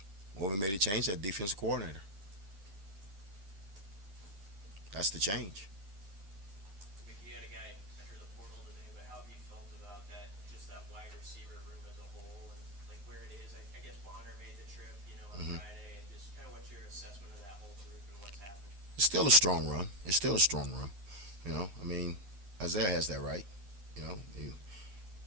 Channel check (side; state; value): left; late; 10 ms